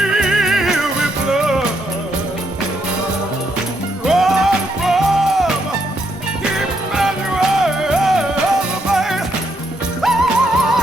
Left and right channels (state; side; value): normal; both; correlation 0.76